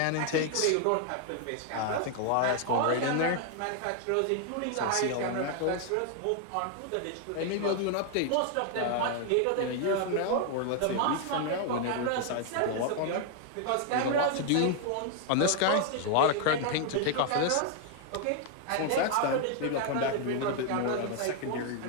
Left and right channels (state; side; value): different; both; correlation 0.00